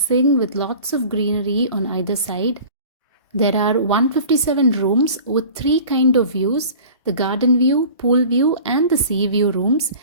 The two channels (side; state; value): both; inverted; correlation -0.42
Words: with lots of greenery on either side. There are 157 rooms with three kinds of views: the garden view, pool view and the sea view rooms,